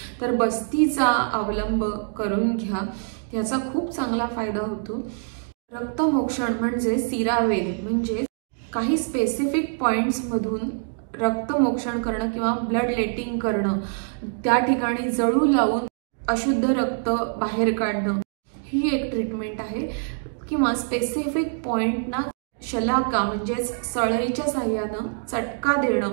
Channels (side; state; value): left; silent; digital silence